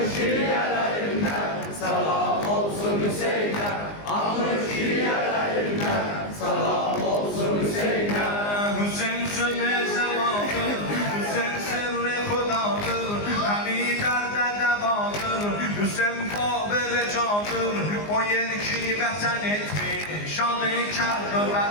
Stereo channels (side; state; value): right; late; 19 ms